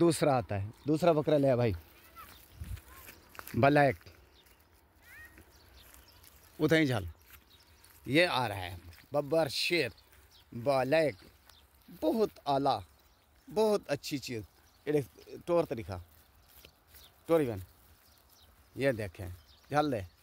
आता है, दूसरा बकरा ले भाई, ब्लैक उधर ही झाल, ये आ रहा है बब्बर शेर ब्लैक, बहुत आला, बहुत अच्छी चीज़। टोर तरीका टोरी बन, ये देखें झाल ले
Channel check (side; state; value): both; identical; correlation 1.00